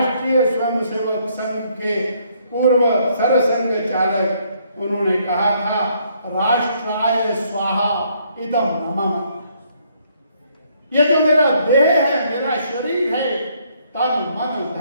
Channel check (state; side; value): inverted; both; correlation -0.68